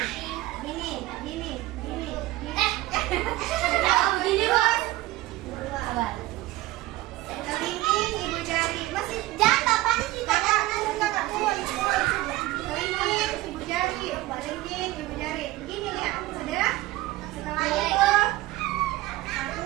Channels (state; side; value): quieter; left; 17.6 dB